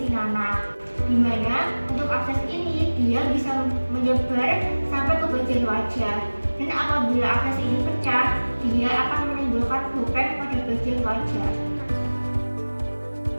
nanah, di mana untuk abses ini dia bisa menyebar sampai ke bagian wajah. Dan apabila abses ini pecah, dia akan menimbulkan bopeng pada bagian wajah.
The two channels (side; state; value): both; inverted; correlation -1.00